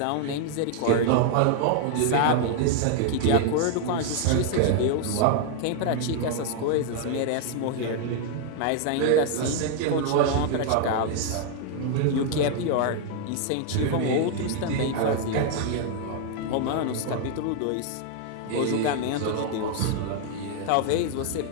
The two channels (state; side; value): different; both; correlation 0.00